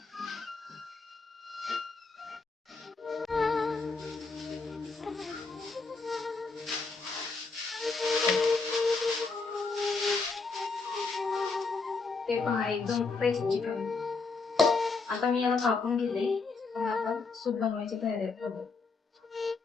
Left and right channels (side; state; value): right; quieter; 4.2 dB